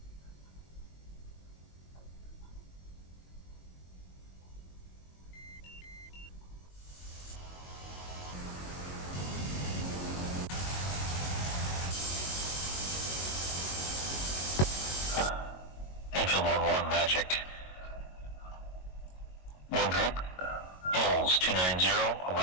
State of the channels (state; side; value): late; right; 22 ms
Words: Enfield 1-1 Magic. 1 group. Bulls 290,